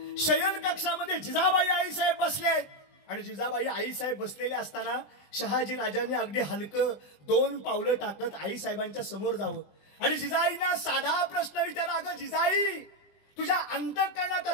शयन कक्षामध्ये जिजाबाई आईसाहेब बसले आहेत. आणि जिजाबाई आईसाहेब बसलेले असताना शहाजी राजांनी अगदी हलकं 2 पावलं टाकत आईसाहेबांच्या समोर जावं आणि जिजाईंना साधा प्रश्न विचारा, अगं जिजाई तुझ्या अंतःकरणात,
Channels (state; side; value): late; right; 20 ms